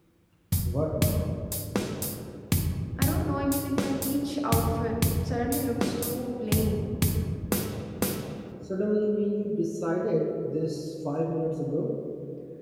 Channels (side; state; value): both; identical; correlation 1.00